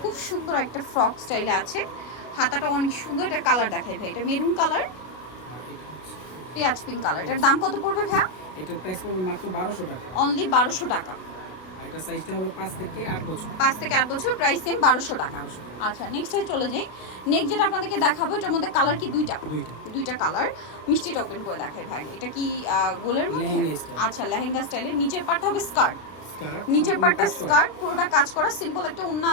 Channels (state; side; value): late; right; 32 ms